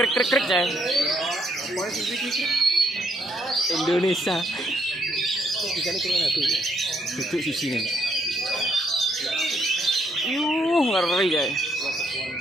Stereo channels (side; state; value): both; normal; correlation 0.73